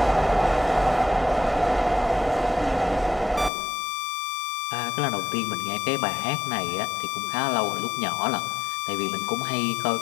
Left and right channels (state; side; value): drops out; right; at 3.5 s